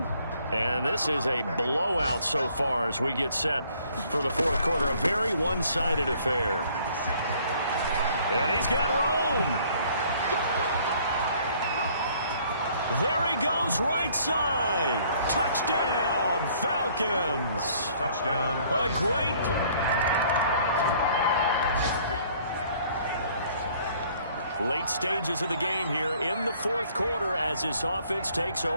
And this is a blowout so far as we get set for the 4th quarter. A very one-sided affair. And he's got room. There he goes, right side. Touchdown, Falcons. Touchdown. A great Late stages of the game here in the fourth quarter as this offense takes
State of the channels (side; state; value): both; inverted; correlation -0.60